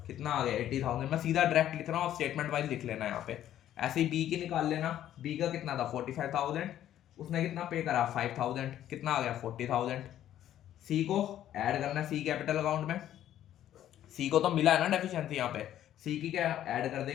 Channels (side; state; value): right; quieter; 11.7 dB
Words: कितना आ गया 80,000। मैं सीधा डायरेक्ट लिख रहा हूँ, स्टेटमेंट वाइज लिख लेना यहाँ पे। ऐसे ही बी की निकाल लेना, बी का कितना था 45,000, उसने कितना पे करा 5,000, कितना आ गया 40,000। सी को ऐड करना सी कैपिटल अकाउंट में, सी को तो मिला है ना डेफिशिएंसी, यहाँ पे सी की क्या ऐड कर